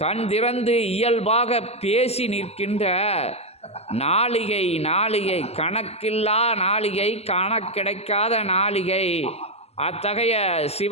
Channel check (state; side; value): late; right; 0.30 ms